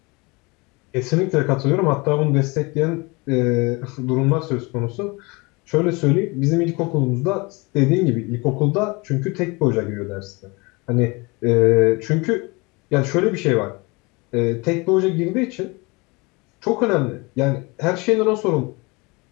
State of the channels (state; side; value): quieter; right; 26.5 dB